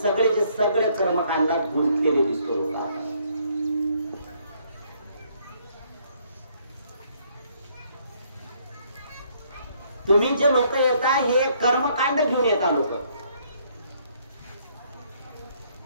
सगळे कर्मकांडात गुंतलेले दिसतो लोक. तुम्ही जे लोक येता हे कर्मकांड घेऊन येता लोक.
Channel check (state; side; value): inverted; both; correlation -0.66